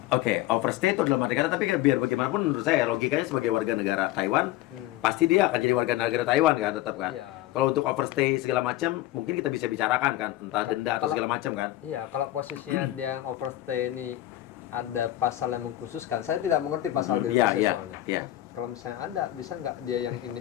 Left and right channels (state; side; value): quieter; right; 15.3 dB